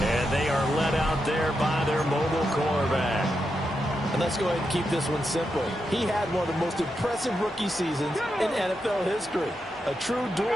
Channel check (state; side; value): normal; both; correlation 0.85